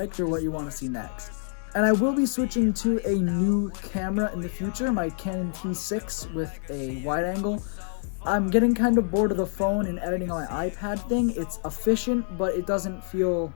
or what you want to see next. And I will be switching to a new camera in the future, my Canon T6 with a wide angle. I'm getting kind of bored of the phone and editing on my iPad thing. It's efficient, but it doesn't feel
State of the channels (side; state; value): right; silent; digital silence